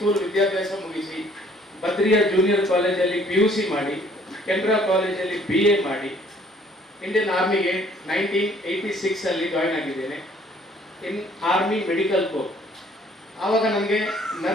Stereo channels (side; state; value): both; normal; correlation 0.59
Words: ವಿದ್ಯಾಭ್ಯಾಸ ಮುಗಿಸಿ ಬದ್ರಿಯಾ ಜೂನಿಯರ್ ಕಾಲೇಜಲ್ಲಿ PUC ಮಾಡಿ ಕೆನರಾ ಕಾಲೇಜಲ್ಲಿ BA ಮಾಡಿ ಇಂಡಿಯನ್ ಆರ್ಮಿಗೆ 1986 ಜಾಯ್ನ್ ಆಗಿದ್ದೇನೆ. ಇನ್ ಆರ್ಮಿ ಮೆಡಿಕಲ್ ಕೋರ್. ಆವಾಗ ನನಗೆ